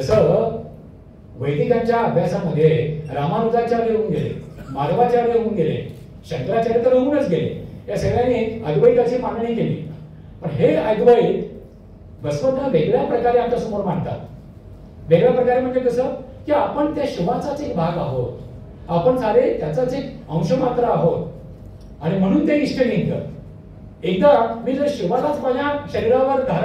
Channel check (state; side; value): identical; both; correlation 1.00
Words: वैदिकांच्या अभ्यासामध्ये रामानुजाचार्य होऊन गेले, माधवाचार्य होऊन गेले, शंकराचार्य तर होऊनच गेले. या सगळ्यांनी अद्वैताची मांडणी केली. पण हे अद्वैत बसवण्ण वेगळ्या प्रकारे आमच्या समोर मांडतात. वेगळ्या प्रकारे म्हणजे कसं की आपण त्या शिवाचाच एक भाग आहोत, आपण सारे त्याचाच एक अंश मात्र आहोत. आणि म्हणून ते इष्टलिंग. एकदा मी जर शिवालाच माझ्या शरीरावर